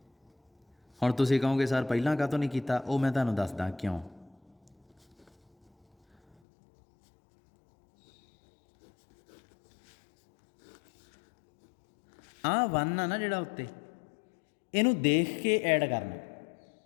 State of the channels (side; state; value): right; drops out; at 6.4 s